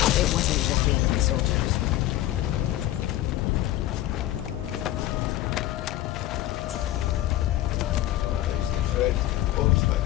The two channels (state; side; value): quieter; right; 14.7 dB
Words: It wasn't just the enemy soldiers. Red, pose my